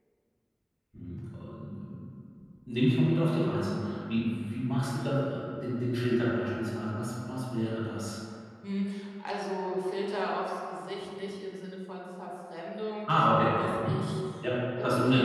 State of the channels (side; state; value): both; identical; correlation 1.00